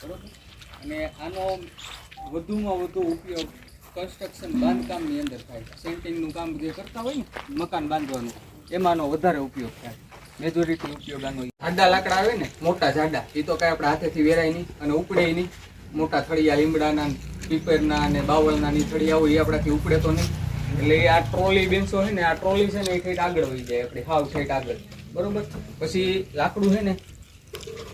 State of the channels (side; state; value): both; identical; correlation 1.00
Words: બરાબર. અને આનો વધુમાં વધુ ઉપયોગ કન્સ્ટ્રક્શન બાંધકામની અંદર થાય. સેન્ટિંગનું કામ જે કરતા હોય ને મકાન બાંધવાનું, એમાંનો વધારે ઉપયોગ થાય. મેજોરિટી ઉપયોગ આનો. જાડા લાકડા આવે ને, મોટા જાડા, એ તો કાંઈ આપણે હાથેથી વેરાય નહીં અને ઉપડે નહીં. મોટા થળિયા લીમડાના, પીપરના અને બાવળના ની થળિયા હોય એ આપણાથી ઉપડે તો નહીં. એટલે આ ટ્રોલી બેન્ચો છે ને, આ ટ્રોલી છે ને એ ઠેઠ આગળ વહી જાય, આપણે હાવ ઠેઠ આગળ, બરોબર. પછી લાકડું છે